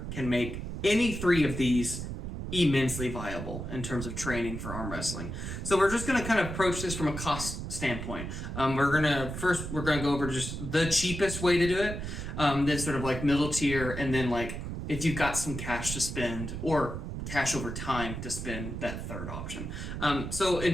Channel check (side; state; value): right; noise; rumble, 6 dB below the sound